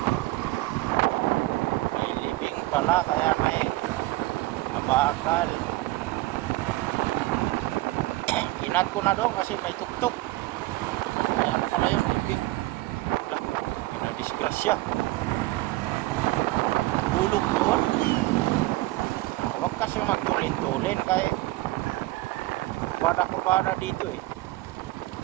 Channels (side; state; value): left; quieter; 18.9 dB